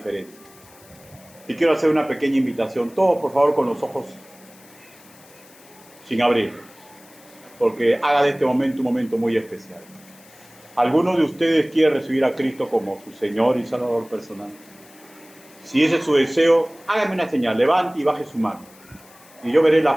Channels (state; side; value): noise; left; hiss, 25 dB below the sound